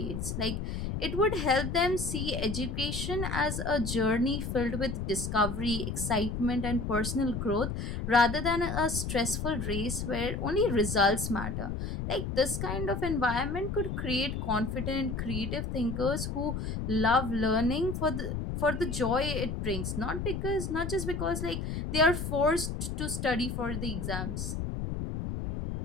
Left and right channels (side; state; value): left; noise; rumble, 3 dB below the sound